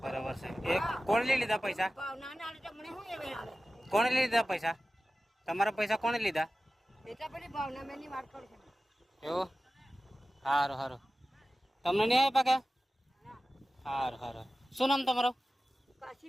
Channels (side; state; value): both; normal; correlation 0.95